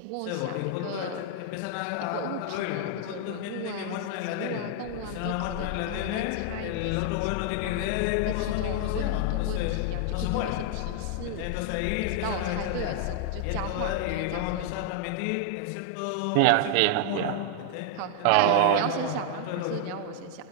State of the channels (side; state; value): both; different; correlation 0.00